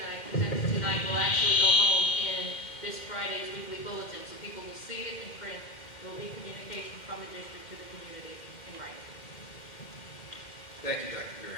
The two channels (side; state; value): right; late; 2.1 ms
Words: I presented tonight will actually go home in this Friday's weekly bulletin, so people will see it in print. There will be communication from the district to the community in writing. Thank you, Dr.